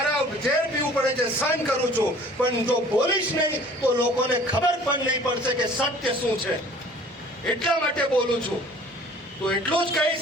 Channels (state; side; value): normal; both; correlation 0.50